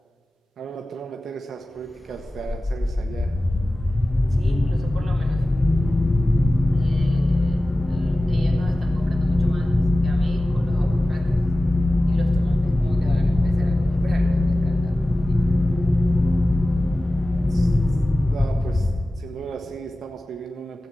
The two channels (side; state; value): both; normal; correlation 0.95